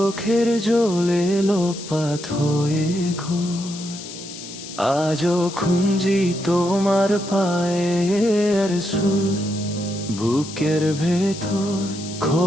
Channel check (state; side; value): noise; left; hiss, 13 dB below the sound